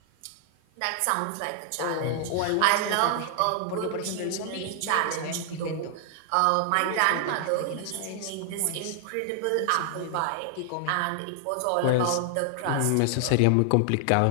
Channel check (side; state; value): both; different; correlation 0.00